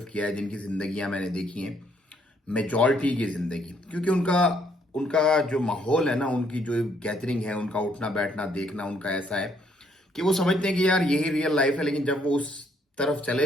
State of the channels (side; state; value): both; normal; correlation 0.69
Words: کیا ہے، جن کی زندگیاں میں نے دیکھی ہیں، میجورٹی کی زندگی، کیونکہ ان کا جو ماحول ہے نا، ان کی جو گیدرنگ ہے، ان کا اٹھنا بیٹھنا دیکھنا ان کا ایسا ہے کہ وہ سمجھتے ہیں کہ یار یہی ریئل لائف ہے، لیکن جب وہ اس طرف چلے